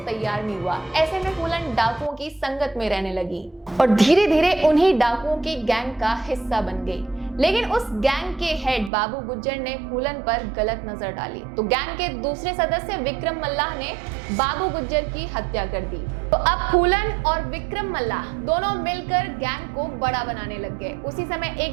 तैयार नहीं हुआ। ऐसे में फूलन डाकुओं की संगत में रहने लगी और धीरे धीरे उन्हीं डाकुओं की गैंग का हिस्सा बन गई। लेकिन उस गैंग के हेड बाबू गुज्जर ने फूलन पर गलत नजर डाली, तो गैंग के दूसरे सदस्य विक्रम मल्लाह ने बाबू गुज्जर की हत्या कर दी। तो अब फूलन और विक्रम मल्लाह दोनों मिलकर गैंग को बड़ा बनाने लग गए। उसी समय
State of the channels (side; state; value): left; drops out; at 8.9 s